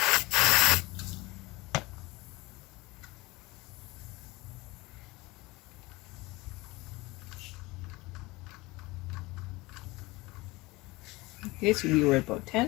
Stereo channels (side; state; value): right; quieter; 22.0 dB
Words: Okay, so we were at about